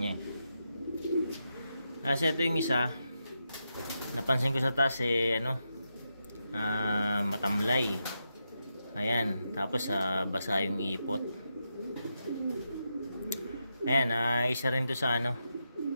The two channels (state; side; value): inverted; both; correlation -0.86